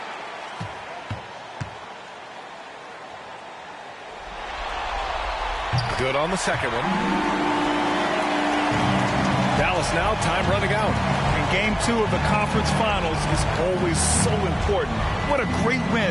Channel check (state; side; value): identical; both; correlation 1.00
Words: Good on the second one. Dallas now, time running out. And game 2 of the conference finals is always so important. What a great